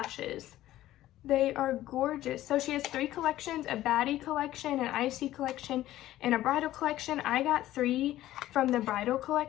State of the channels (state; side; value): quieter; right; 14.5 dB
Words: They are gorgeous. So she has 3 collections, a baddie collection, an icy collection, and a bridal collection. I got 3 from the bridal